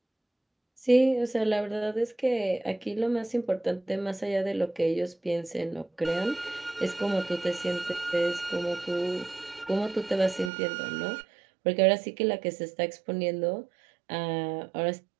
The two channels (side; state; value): left; drops out; at 10.5 s